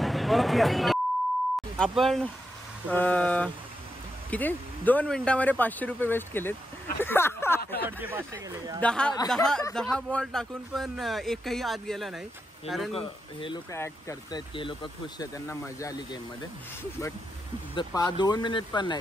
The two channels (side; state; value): both; normal; correlation 0.85